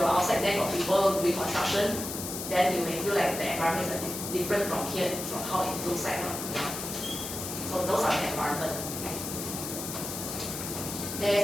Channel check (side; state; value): left; noise; hiss, 6 dB below the sound